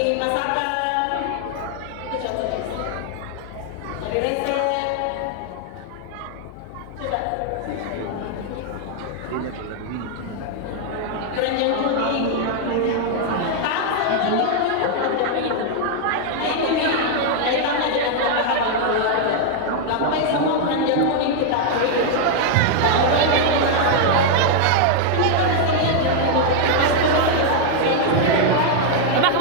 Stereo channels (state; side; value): different; both; correlation 0.00